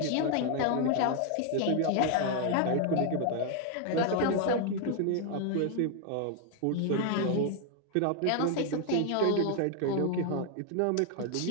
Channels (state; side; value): different; both; correlation 0.00